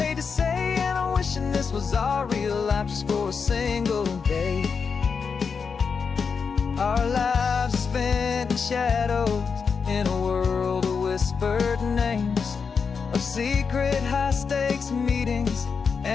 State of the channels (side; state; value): right; quieter; 5.7 dB